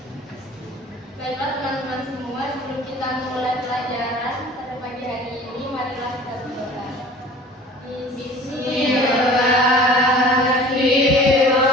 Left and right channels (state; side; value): normal; both; correlation 0.44